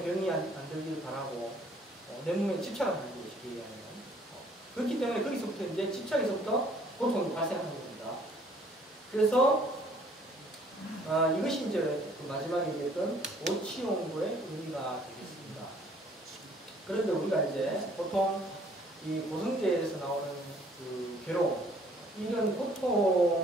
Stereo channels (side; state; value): both; normal; correlation 0.60